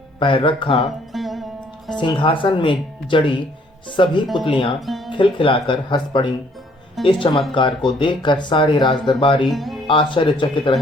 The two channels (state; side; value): normal; both; correlation 0.63